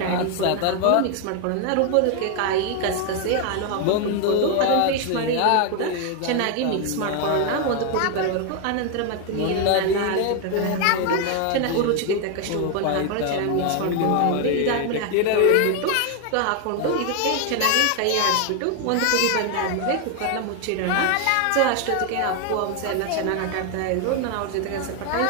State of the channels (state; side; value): different; both; correlation 0.01